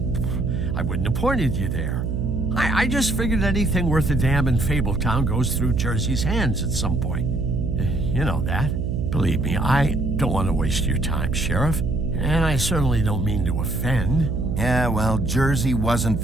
wouldn't have pointed you there. I just figured anything worth a damn in Fabletown goes through Jersey's hands at some point. You know that. Believe me, I don't want to waste your time, Sheriff. And I certainly don't mean to offend. Yeah, well, Jersey wasn't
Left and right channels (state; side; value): noise; right; hum, 1 dB below the sound